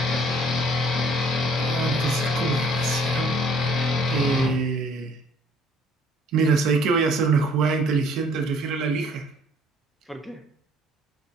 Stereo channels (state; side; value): normal; both; correlation 0.58